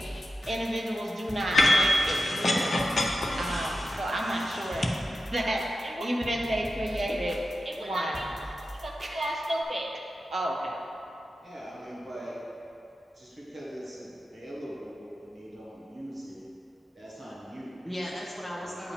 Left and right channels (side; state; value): both; normal; correlation 0.92